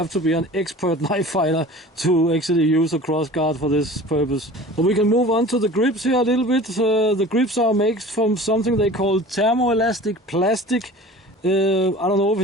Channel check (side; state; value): both; normal; correlation 0.41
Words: to be an expert knife fighter to actually use a cross guard for this purpose. But we can move on to the grips here a little bit. The grips are made from something they call thermoelastic plastic. I don't know if